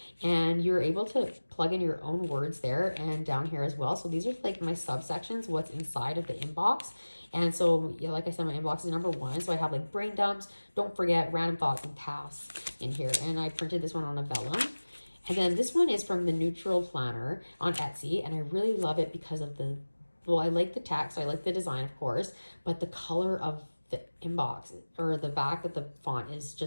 and you're able to plug in your own words there and down here as well. So these are like my subsections, what's inside of the inbox. And so, yeah, like I said, my inbox is number 1. So I have like brain dumps, don't forget, random thoughts, and tasks in here. And I printed this one on a vellum. And then this one is from the Neutral Planner on Etsy, and I really love it because of I like the text, I like the design, of course, but the color of the inbox or the back of the font is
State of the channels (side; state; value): both; inverted; correlation -1.00